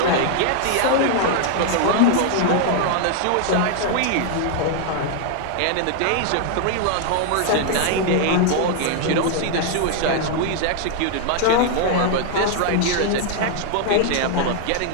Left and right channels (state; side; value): different; both; correlation 0.00